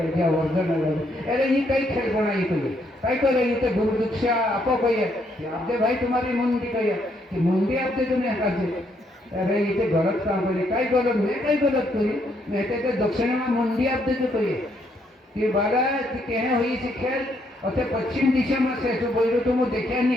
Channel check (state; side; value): normal; both; correlation 0.73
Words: जियो अर्जुन आयला अरे ये कई खेल बनाई तो कई करे ये तो गुरु दीक्षा आपो कहिए आपदे भाई तुम्हारी मुंडी कहिए कि मुंडी आपदे तुम्हें हकाजे अरे ये तो गलत काम करे कई गलत मैं कई गलत करी मैं तो दक्षिण में मुंडी आपदे जो कहिए कि बाला कि कहे हुई सी खेल और पश्चिम दिशा में से तो बोलो तो वो देखा